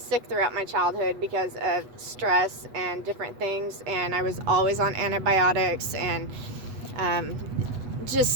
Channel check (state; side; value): late; left; 8.1 ms